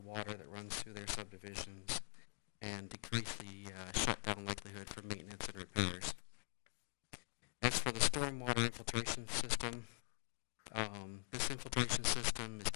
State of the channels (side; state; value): right; silent; digital silence